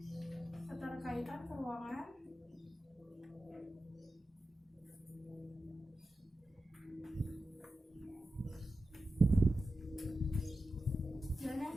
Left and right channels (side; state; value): both; normal; correlation 0.92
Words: Keterkaitan keuangan, dan yang